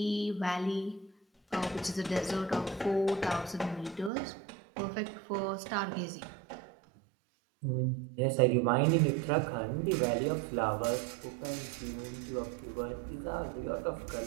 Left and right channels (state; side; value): drops out; left; at 4.1 s